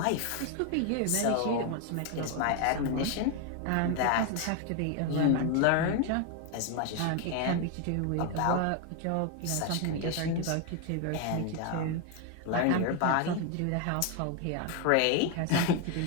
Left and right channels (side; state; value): both; different; correlation 0.01